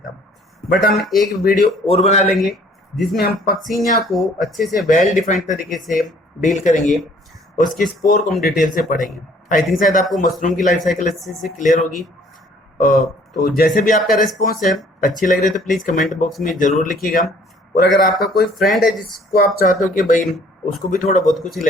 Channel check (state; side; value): normal; both; correlation 0.57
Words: बट हम एक वीडियो और बना लेंगे जिसमें हम पक्सिनिया को अच्छे से वेल डिफाइंड तरीके से डील करेंगे, उसके स्पोर को हम डिटेल से पढ़ेंगे। आई थिंक शायद आपको मशरूम की लाइफ साइकिल अच्छे से क्लियर होगी। तो जैसे भी आपका रिस्पॉन्स है अच्छी लग रही है तो प्लीज़ कमेंट बॉक्स में ज़रूर लिखिएगा। और अगर आपका कोई फ्रेंड है जिसको आप चाहते हो कि भाई उसको भी थोड़ा बहुत कुछ